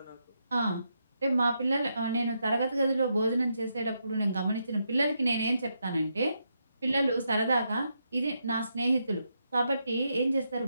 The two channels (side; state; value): both; inverted; correlation -0.81